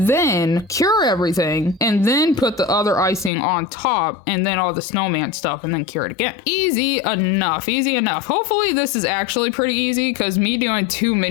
then cure everything, and then put the other icing on top, and then all the snowman stuff, and then cure it again. Easy enough, easy enough. Hopefully this is actually pretty easy, because me doing 2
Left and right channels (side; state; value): right; drops out; at 3.3 s